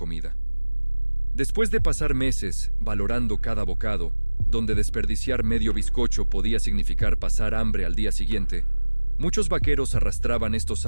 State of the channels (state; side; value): inverted; both; correlation -1.00